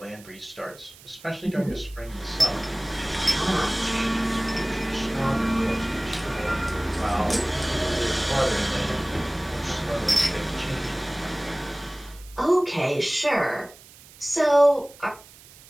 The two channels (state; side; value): noise; right; hiss, 22 dB below the sound